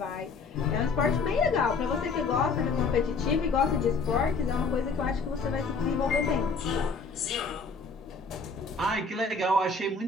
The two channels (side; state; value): right; quieter; 4.3 dB